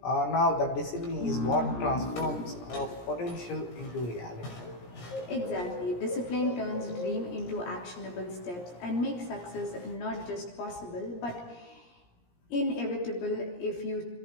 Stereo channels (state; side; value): late; right; 17 ms